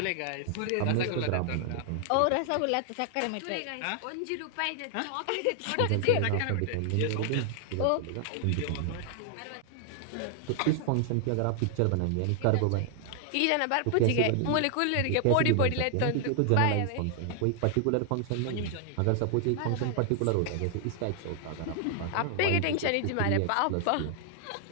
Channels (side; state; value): both; different; correlation 0.00